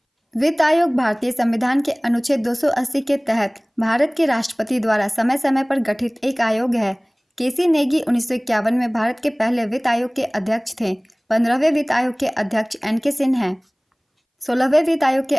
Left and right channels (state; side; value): identical; both; correlation 1.00